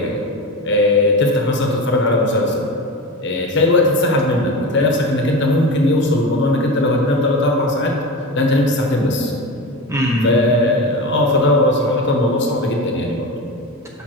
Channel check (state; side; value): normal; both; correlation 0.25